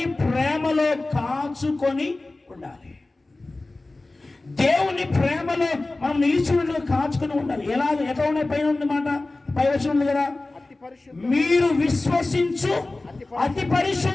ప్రేమలో కాచుకొని ఉండాలి. దేవుని ప్రేమలో మనం నిలిచినట్లు కాచుకొని ఉండాలి. ఎట్లా ఉన్నాయి? పైన ఉంది మాట, పై వచనం ఉంది కదా, మీరు విశ్వసించు అతి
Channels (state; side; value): quieter; right; 3.1 dB